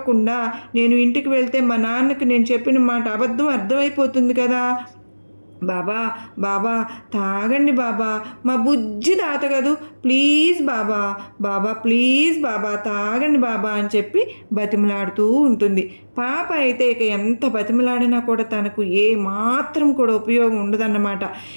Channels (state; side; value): inverted; both; correlation -1.00